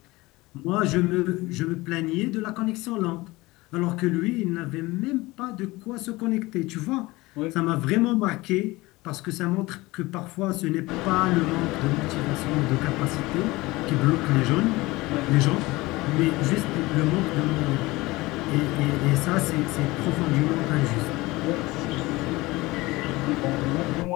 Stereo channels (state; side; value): quieter; right; 21.0 dB